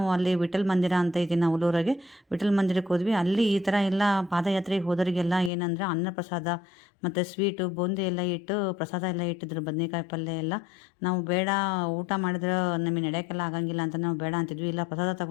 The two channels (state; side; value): drops out; right; at 5.5 s